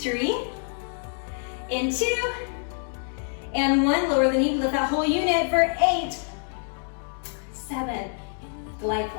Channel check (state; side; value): silent; right; digital silence